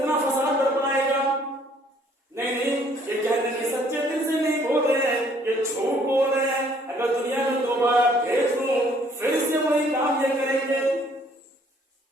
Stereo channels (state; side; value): normal; both; correlation 0.62